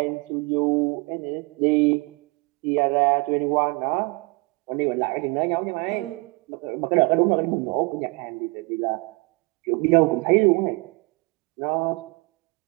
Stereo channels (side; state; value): left; quieter; 27.7 dB